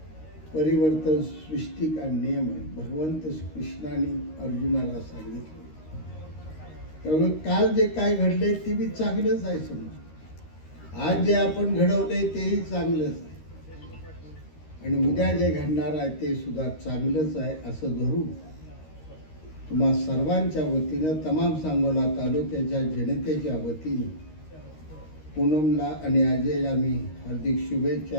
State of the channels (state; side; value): late; right; 13 ms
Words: परिवर्तन सृष्टि का नियम है, भगवंत कृष्णाने अर्जुनाला सांगितले। त्यामुळे काल जे काय घडले ते बी चांगलंच आहे समजा, आज जे आपण घडवले तेही चांगलंच आहे, आणि उद्या जे घडणार आहे ते सुद्धा चांगलंच आहे असं धरून तुम्हा सर्वांच्या वतीनं, तमाम सांगोला तालुक्याच्या जनतेच्या वतीने पूनमला आणि अजयला मी हार्दिक